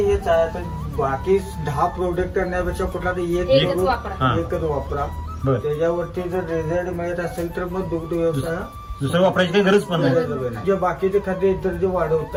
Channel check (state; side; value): identical; both; correlation 1.00